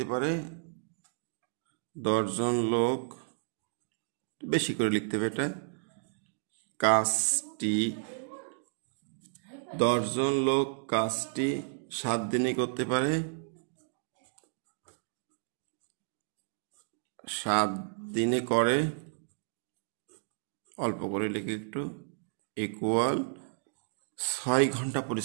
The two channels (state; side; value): silent; left; digital silence